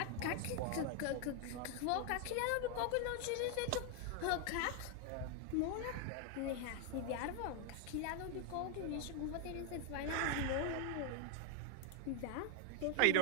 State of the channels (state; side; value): different; both; correlation 0.00